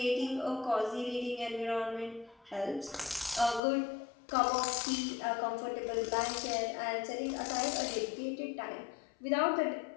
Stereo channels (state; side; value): drops out; right; at 3.6 s